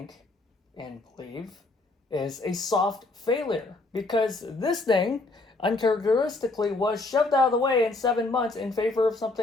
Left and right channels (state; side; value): quieter; right; 3.2 dB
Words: and believe is a soft failure. Because this thing uncharacteristically was shoved out of the way in 7 months in favor of